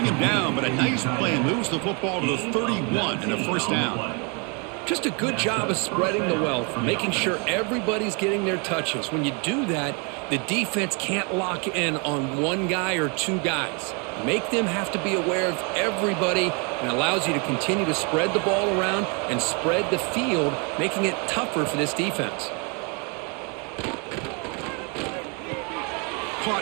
him down, but a nice play moves the football to the 31 and a 1st down. Just a good job of spreading the wealth, making sure everybody's getting their touches. When you do that, the defense can't lock in on one guy or 2 guys. Make them have to be aware of everybody and allows you to continue to spread the ball around and spread the field, making it tougher for this defense.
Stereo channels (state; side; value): quieter; left; 33.8 dB